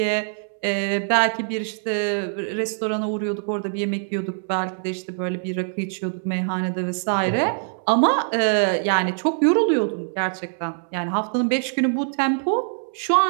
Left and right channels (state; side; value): silent; left; 63 dB below the other